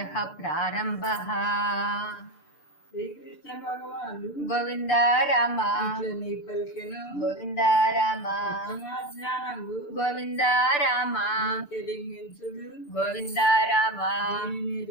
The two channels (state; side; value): late; right; 6.8 ms